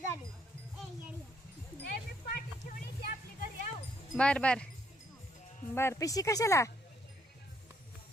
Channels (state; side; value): normal; both; correlation 0.70